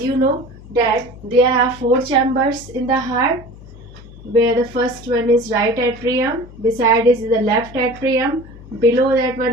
you know that there are 4 chambers in the heart, where the first one is right atrium, beside is the left atrium, below that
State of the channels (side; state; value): left; noise; hum, 19 dB below the sound